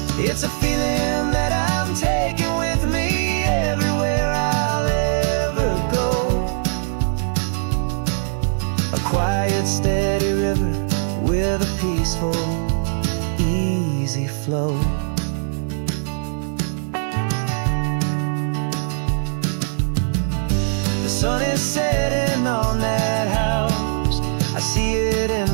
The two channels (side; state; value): left; silent; digital silence